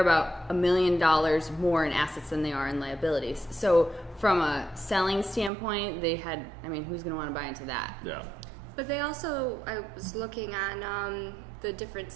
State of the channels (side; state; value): left; drops out; at 5.5 s